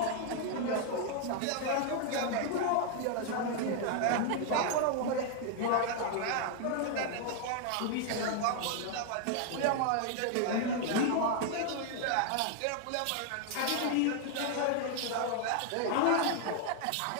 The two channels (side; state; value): both; different; correlation 0.00